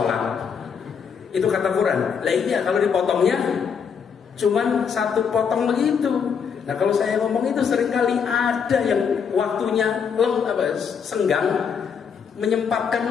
Itu kata Quran. Lah iya kalau dipotongnya cuman satu potong begitu. Nah kalau saya ngomong itu seringkali ada yang waktunya senggang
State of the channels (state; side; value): quieter; right; 6.7 dB